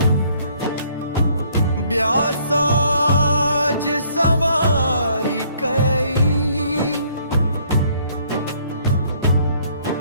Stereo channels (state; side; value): inverted; both; correlation -0.63